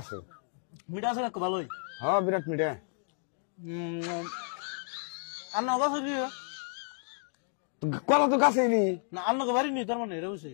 মিঠা আছে কাকু ভালোই। হ্যাঁ বিরাট মিঠা। আন্না গাছ হইলি কলা তো গাছে নি না? আন্নাকে বাড়ি নি তার মানে এটা বুঝছি।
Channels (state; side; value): silent; right; 57 dB below the other